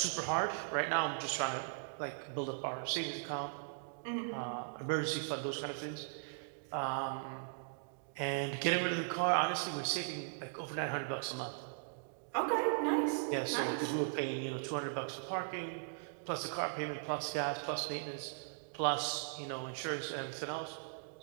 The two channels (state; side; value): silent; left; digital silence